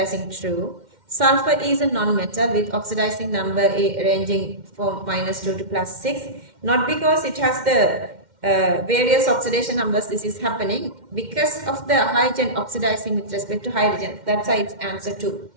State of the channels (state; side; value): late; left; 2.1 ms